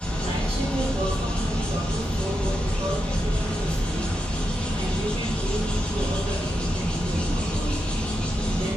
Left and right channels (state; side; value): normal; both; correlation 0.86